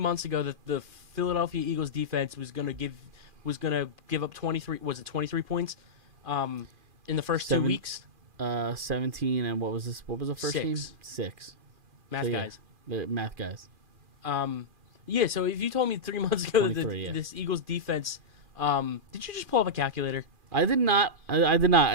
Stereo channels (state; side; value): late; left; 2.4 ms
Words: ago that the Philadelphia Eagles defense was gonna give up 23, was it 23 points in the first 2 weeks? 17, and what was this? What was the first game? 6. Guys. The math guys. Yeah, so if you told me 3 months ago that this Eagles defense, did you just pull up a calculator? I did not. I did